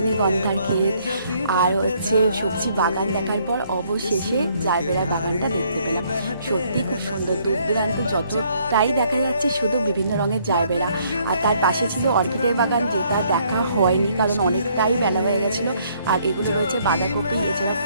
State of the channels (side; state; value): both; inverted; correlation -0.66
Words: ক্ষেত আর সবজি বাগান দেখার পর অবশেষে জারবেরা বাগানটা দেখতে পেলাম। সত্যি খুব সুন্দর, দূর দূরান্ত যতটাই দেখা যাচ্ছে শুধু বিভিন্ন রঙের জারবেরা। আর তার পাশে ছিল অর্কিডের বাগান, যেটা দেখা হয়নি কারণ অনেকটাই বেলা হয়ে গেছিলো। আর এগুলো রয়েছে বাঁধাকপি, এছাড়া